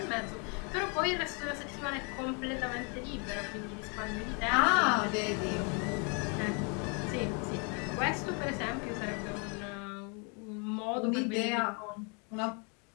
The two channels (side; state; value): right; quieter; 35.2 dB